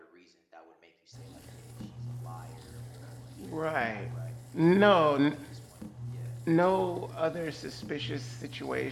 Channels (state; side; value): identical; both; correlation 1.00